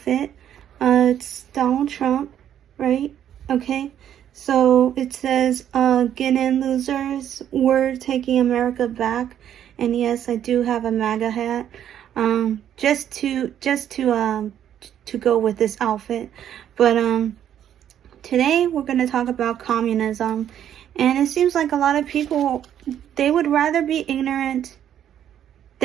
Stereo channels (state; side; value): quieter; left; 10.2 dB